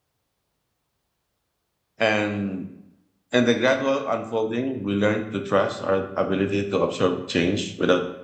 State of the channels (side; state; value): both; identical; correlation 1.00